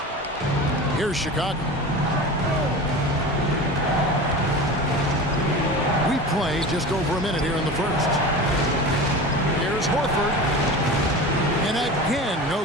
Here's Chicago. We play just over a minute here in the first. Here's Horford. And again, no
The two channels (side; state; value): both; normal; correlation 0.32